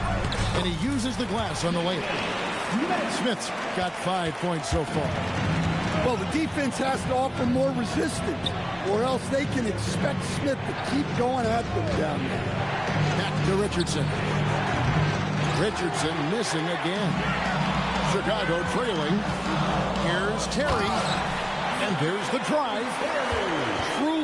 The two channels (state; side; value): identical; both; correlation 1.00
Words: And he uses the glass on the layup. Smith's got 5 points so far. Well, the defense has to offer more resistance, or else they can expect Smith to keep going at them down there. Back to Richardson. Richardson missing again. Chicago trailing. Here's Terry. And there's the drive.